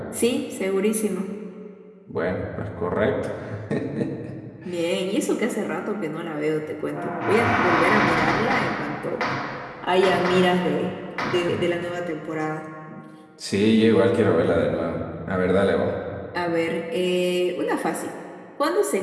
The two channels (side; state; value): both; identical; correlation 1.00